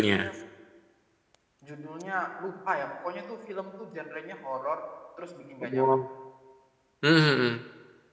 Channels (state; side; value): identical; both; correlation 1.00